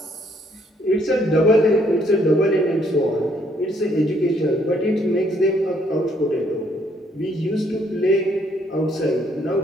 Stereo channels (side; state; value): both; normal; correlation 0.68